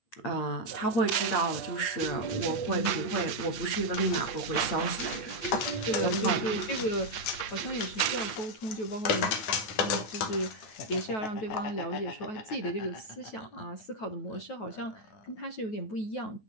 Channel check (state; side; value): late; right; 9.3 ms